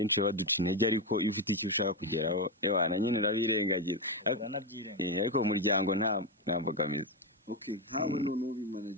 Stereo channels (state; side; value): normal; both; correlation 0.09